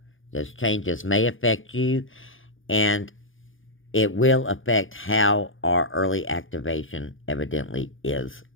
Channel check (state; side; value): late; right; 0.58 ms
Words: those changes may affect you, and it will affect how our early activation evidently is